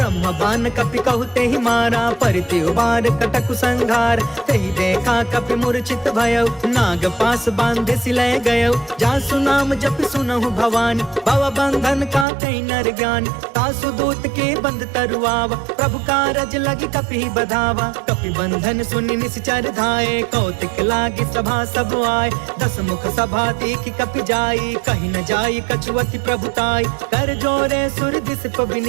बान कपि कहु तेहि मारा, परिति उबार कटकु संघार। तेहि देखा कपि मूर्छित भयउ, नाग पास बांधे सिलय गयउ। जासु नाम जप सुनहु भवानी, भव बंधन काटई नर ज्ञानी। तासु दूत के बंध तरुआवा, प्रभु कारज लगी कपि बधावा। कपि बंधन सुनि निश्चर धाये, कौतिक लागी सभा सब आए। दस मुख सभा देखि कपि जाई, कहि न जाई कछुअति प्रभुताई। कर जोरे सुर दिसप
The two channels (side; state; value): left; drops out; at 12.2 s